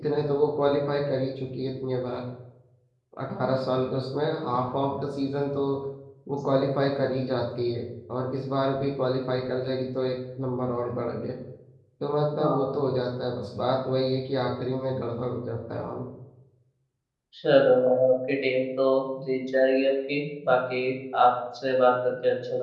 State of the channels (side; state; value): both; identical; correlation 1.00